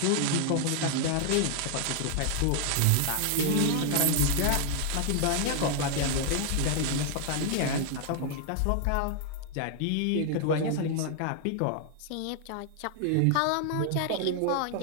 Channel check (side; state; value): both; different; correlation 0.00